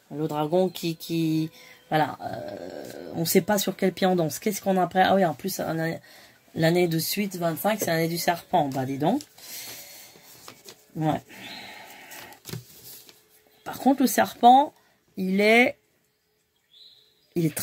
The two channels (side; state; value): both; identical; correlation 1.00